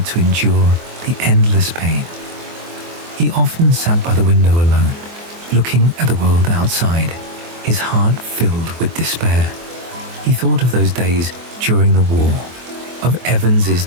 to endure the endless pain. He often sat by the window alone, looking at the world outside, his heart filled with despair. He thought of those days during the war, of Evans's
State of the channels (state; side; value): late; left; 24 ms